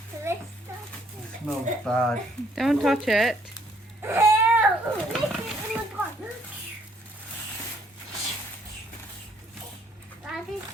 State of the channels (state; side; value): normal; both; correlation 0.66